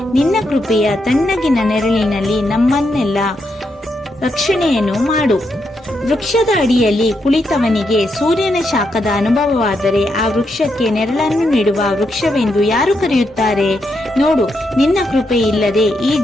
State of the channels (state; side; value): normal; both; correlation 0.81